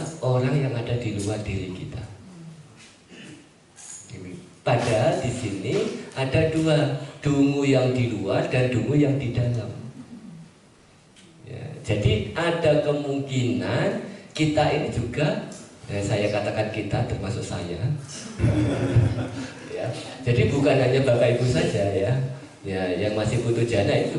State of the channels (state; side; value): identical; both; correlation 1.00